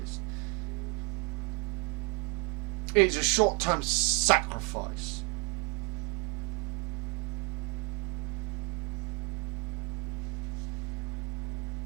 It's a short-term sacrifice.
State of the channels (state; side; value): quieter; left; 31.3 dB